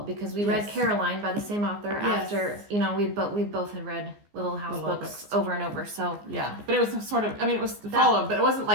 because we read Caroline by the same author after, we both had read Little House books over and over. So yeah, but it was sort of, it was followed, but it wasn't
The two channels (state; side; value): late; left; 14 ms